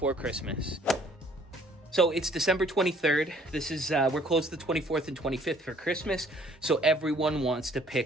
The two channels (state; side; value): normal; both; correlation 0.59